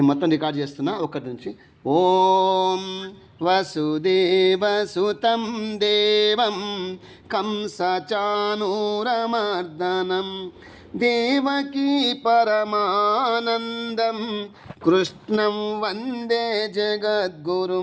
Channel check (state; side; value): identical; both; correlation 1.00